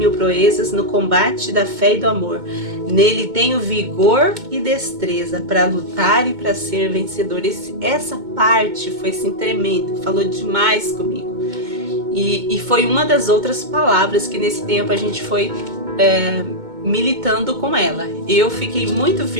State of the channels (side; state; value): left; late; 2.2 ms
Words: proezas no combate da fé e do amor. Nele tenho vigor e destreza para lutar e para ser vencedor. Essa parte foi assim tremenda, falou demais comigo. E foi uma das outras palavras que nesse tempo a gente foi militando com ela. Eu fiquei muito